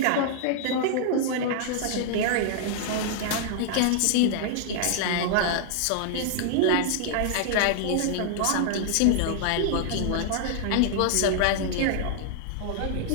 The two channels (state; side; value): different; both; correlation -0.01